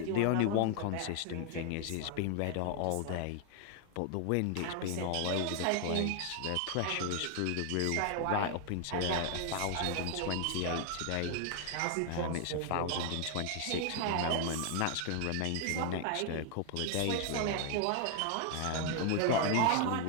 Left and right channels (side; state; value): both; different; correlation 0.00